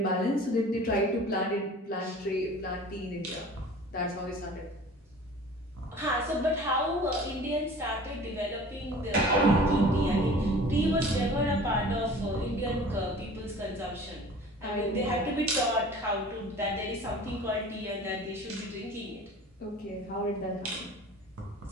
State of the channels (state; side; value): normal; both; correlation 0.43